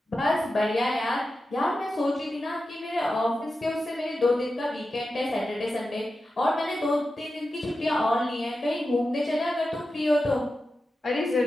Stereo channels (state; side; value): normal; both; correlation 0.92